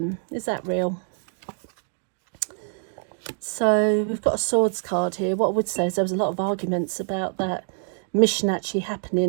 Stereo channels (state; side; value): silent; left; digital silence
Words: Is that real? So we've got a Swords card here. What I would say is there was a lot of arguments about that mission actually